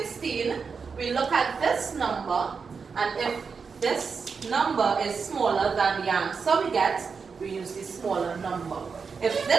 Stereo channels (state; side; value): quieter; left; 5.4 dB